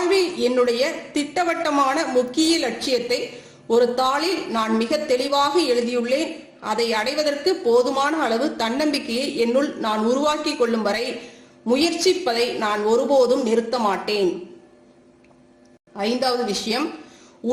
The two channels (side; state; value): both; identical; correlation 1.00